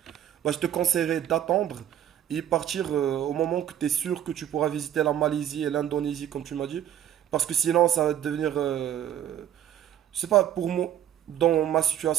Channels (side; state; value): left; quieter; 10.7 dB